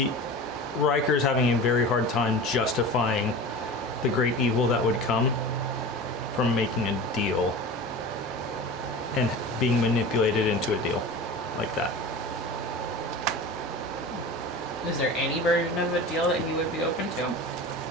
Riker's having a very hard time justifying the great evil that would come from making a deal and being manipulated into a deal like that. Is there any version of a deal that he would be open to?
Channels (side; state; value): both; normal; correlation 0.33